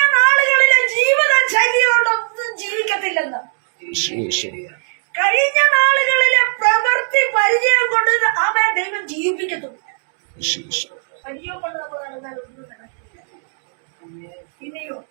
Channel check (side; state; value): left; silent; 67 dB below the other